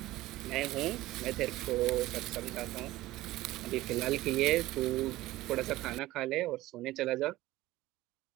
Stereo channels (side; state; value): left; quieter; 17.1 dB